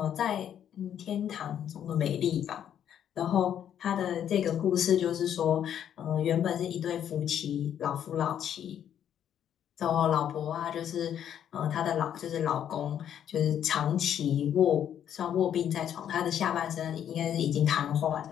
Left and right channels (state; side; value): quieter; right; 9.7 dB